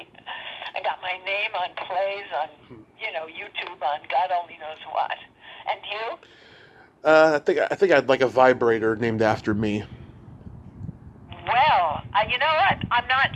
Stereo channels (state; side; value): identical; both; correlation 1.00